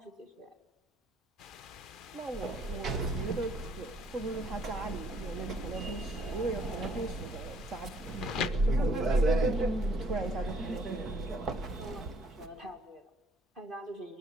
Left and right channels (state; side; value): normal; both; correlation 0.63